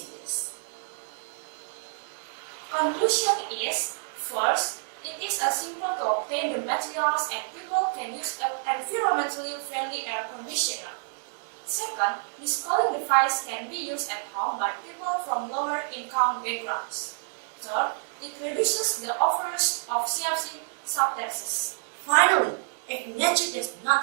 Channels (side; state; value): left; silent; 59 dB below the other